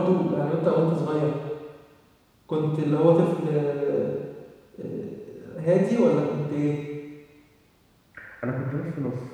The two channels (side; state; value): both; identical; correlation 1.00